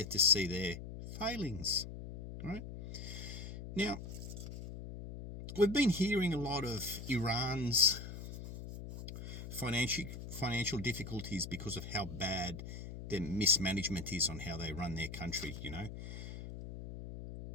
to see their failings, right? Now, we've been hearing a lot of Iran's financial difficulties because of how bad their mismanagement is on how they run their country,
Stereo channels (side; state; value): left; noise; hum, 9 dB below the sound